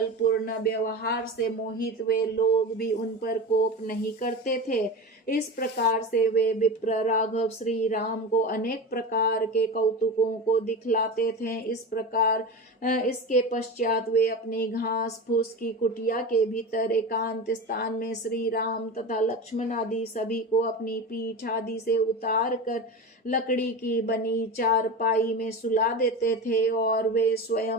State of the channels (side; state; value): both; normal; correlation 0.26